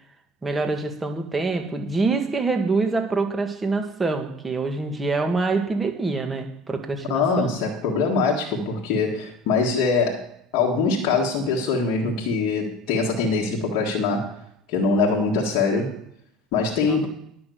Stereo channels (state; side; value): normal; both; correlation 0.42